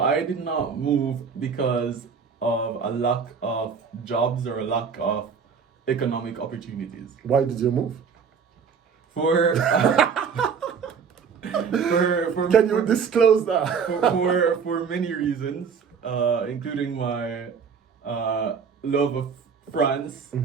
did not move because of a lack of jobs or a lack of economic opportunities. Why did you move? For Can you disclose that? for many reasons, including my love of France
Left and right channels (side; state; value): left; quieter; 6.2 dB